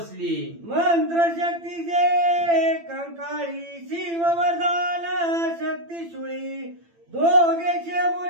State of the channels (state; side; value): late; left; 8.9 ms